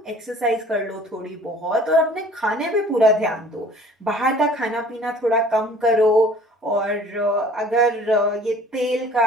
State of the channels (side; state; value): both; normal; correlation 0.50